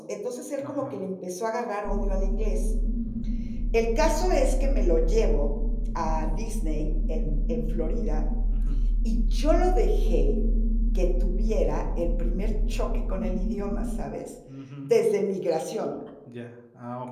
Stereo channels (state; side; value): identical; both; correlation 1.00